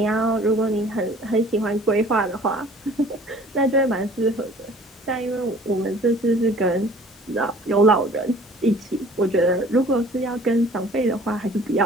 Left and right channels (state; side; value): normal; both; correlation 0.50